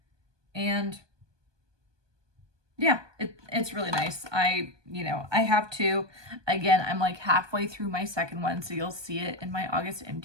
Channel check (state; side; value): late; left; 1.2 ms